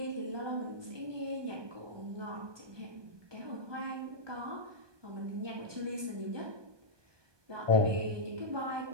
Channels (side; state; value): left; late; 1.2 ms